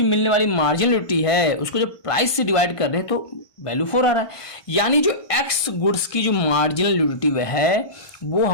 मिलने वाली मार्जिनल यूटिलिटी है उसको जब प्राइस से डिवाइड कर रहे हैं तो वैल्यू 4 आ रहा है। यानी जो X गुड्स की जो मार्जिनल यूटिलिटी वह है वो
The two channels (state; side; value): late; right; 1.2 ms